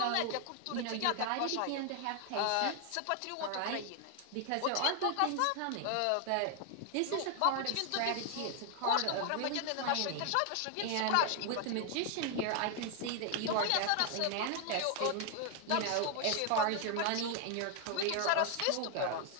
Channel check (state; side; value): different; both; correlation 0.00